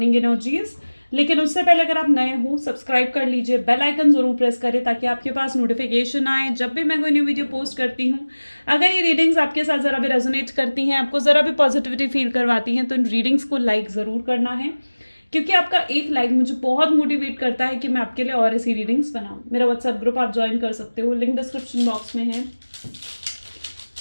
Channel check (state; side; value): inverted; both; correlation -1.00